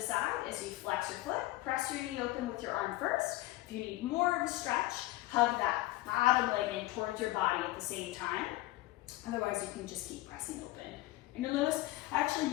side as you flex your foot. Press your knee open with your arm first. If you need more of a stretch, hug that bottom leg in towards your body at the same time. Otherwise, you can just keep pressing open. And you'll notice I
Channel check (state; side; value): quieter; right; 18.1 dB